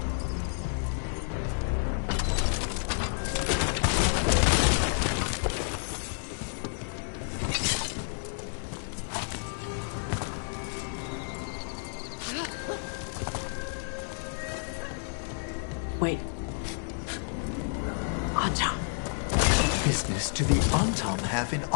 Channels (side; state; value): right; silent; digital silence